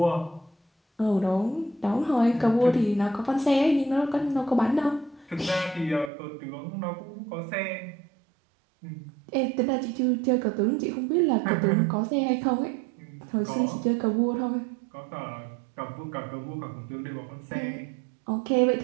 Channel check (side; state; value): left; drops out; at 6.1 s